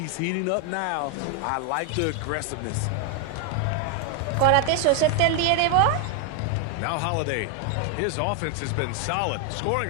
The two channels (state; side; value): different; both; correlation 0.01